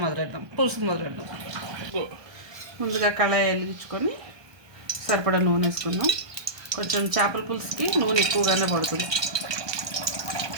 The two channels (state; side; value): late; left; 1.2 ms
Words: పులుసు మొదలెద్దాం. ముందుగా కళాయి వెలిగించుకొని సరిపడా నూనె వేసుకుందాం. కొంచెం చేపల పులుసుకి నూనె ఎక్కువగానే పడుతుంది.